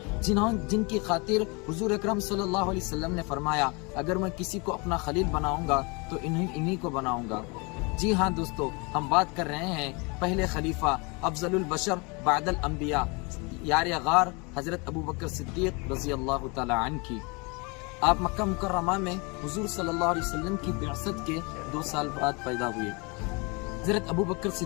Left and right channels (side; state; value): right; quieter; 29.5 dB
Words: جن کی خاطر حضور اکرم صلی اللہ علیہ وسلم نے فرمایا اگر میں کسی کو اپنا خلیل بناؤں گا تو انہی کو بناؤں گا؟ جی ہاں دوستو، ہم بات کر رہے ہیں پہلے خلیفہ افضل البشر بعد الانبیاء یار غار حضرت ابو بکر صدیق رضی اللہ تعالی عنہ کی۔ آپ مکہ مکرمہ میں حضور صلی اللہ علیہ وسلم کی بعثت کے 2 سال بعد پیدا ہوئے۔ حضرت ابو بکر